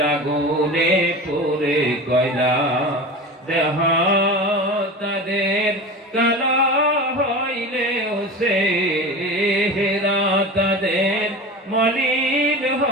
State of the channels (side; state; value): both; normal; correlation 0.31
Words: আগুনে পুরে কয়লা। দেহ তাদের কালা হইলেও সে হেরা, তাদের মলিন